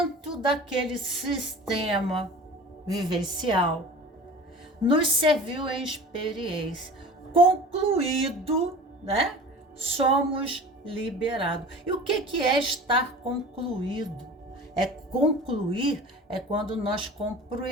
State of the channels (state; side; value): normal; both; correlation 0.39